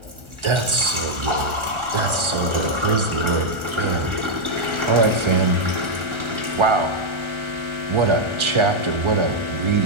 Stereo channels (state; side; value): late; left; 1.4 ms